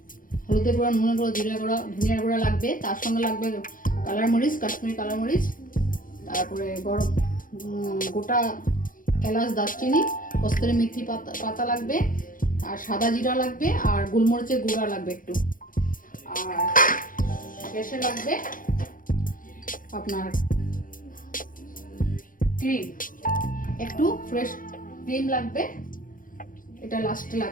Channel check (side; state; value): right; late; 0.40 ms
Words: গুঁড়া, নুনের গুঁড়া, জিরা গুঁড়া, ধনিয়ার গুঁড়া লাগবে। তার সঙ্গে লাগবে কালার মরিচ, কাশ্মীরি কালার মরিচ, তারপরে গরম গোটা এলাচ, দারচিনি, কস্তুরি মেথি পাতা লাগবে, আর সাদা জিরা লাগবে, আর গোলমরিচের গুঁড়া লাগবে একটু। আর শেষে লাগবে আপনার ক্রিম, একটু ফ্রেশ ক্রিম লাগবে, এটা লাস্টে